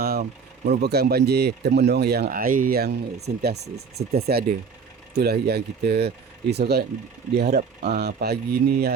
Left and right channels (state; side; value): quieter; left; 5.7 dB